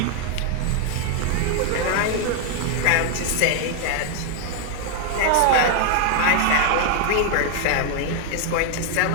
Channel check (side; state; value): both; different; correlation 0.00